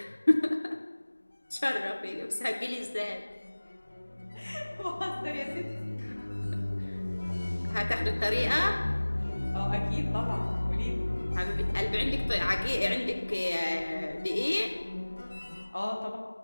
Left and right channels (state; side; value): inverted; both; correlation -1.00